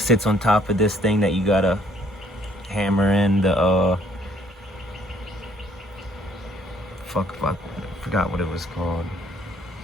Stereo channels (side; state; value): both; normal; correlation 0.63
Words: on top of this thing that you gotta hammer in the I forgot what it was called.